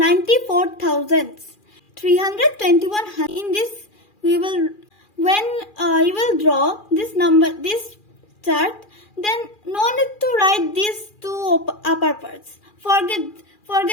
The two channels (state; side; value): late; right; 2.4 ms